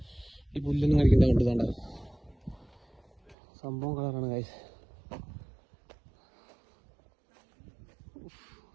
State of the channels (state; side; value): drops out; left; at 3.4 s